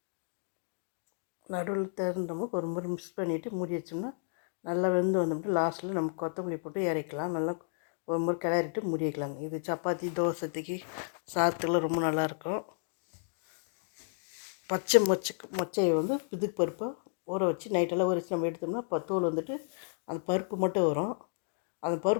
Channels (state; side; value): silent; right; digital silence